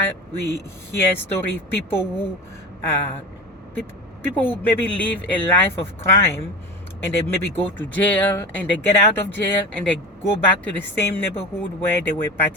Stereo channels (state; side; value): normal; both; correlation 0.29